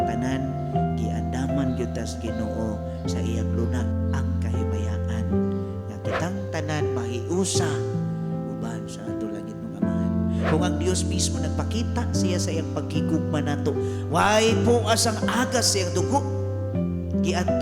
giandaman gyud tas Ginoo sa iyang lunag ang kahimayaan. Nga kitang tanan mahiusa uban sa ato langit ng Amahan. Kung ang Dios mismo nagpakita siya sa iyang paghigugma nato, way po asang agas sa iyang dugo.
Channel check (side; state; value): both; identical; correlation 1.00